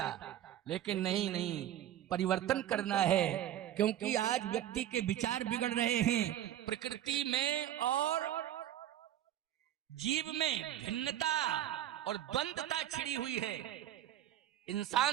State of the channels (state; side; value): quieter; left; 11.9 dB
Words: लेकिन नहीं, परिवर्तन करना है। क्योंकि आज व्यक्ति के विचार बिगड़ रहे हैं। प्रकृति में और जीव में भिन्नता और द्वंद्वता छिड़ी हुई है।